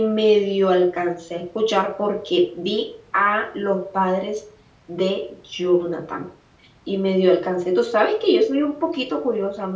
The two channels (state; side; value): identical; both; correlation 1.00